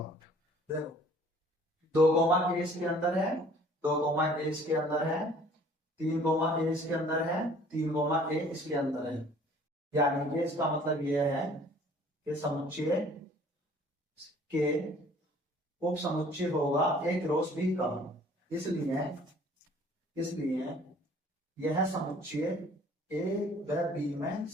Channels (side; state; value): both; normal; correlation 0.54